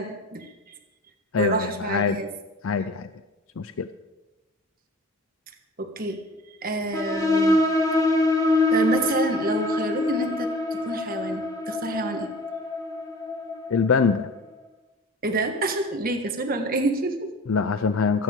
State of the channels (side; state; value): both; normal; correlation 0.43